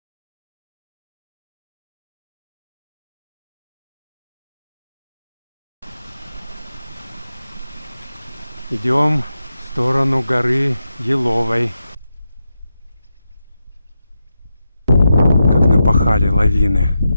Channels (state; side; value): inverted; both; correlation -0.88